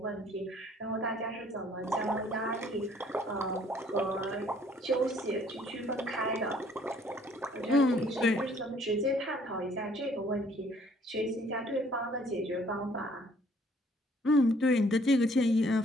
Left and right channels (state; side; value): normal; both; correlation 0.60